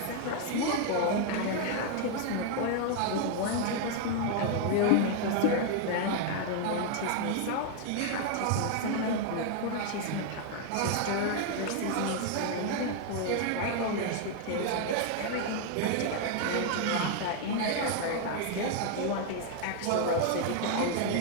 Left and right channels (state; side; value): different; both; correlation 0.00